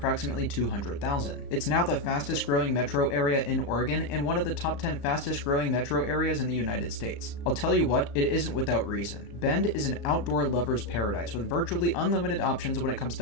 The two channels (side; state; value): right; late; 35 ms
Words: 200,000. It's now the fastest growing metro area in Oregon and one of the top 10 fastest growing metro areas in the United States. I'll tell you what, it isn't without reason. Bend is an outdoor lover's paradise with virtually unlimited options when it comes